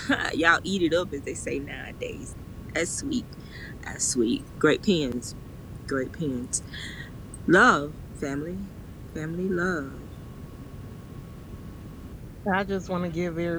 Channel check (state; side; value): identical; both; correlation 1.00